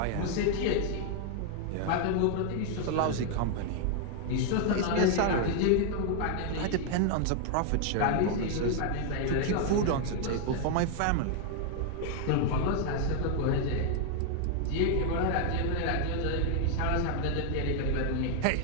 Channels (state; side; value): different; both; correlation 0.00